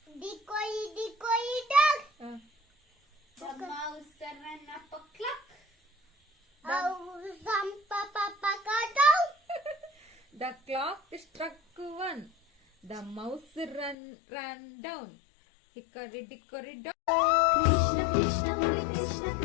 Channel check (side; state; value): right; drops out; at 14.0 s